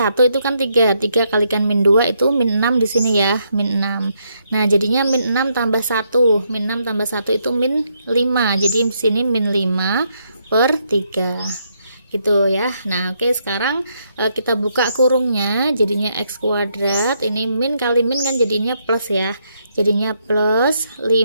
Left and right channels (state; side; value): inverted; both; correlation -0.76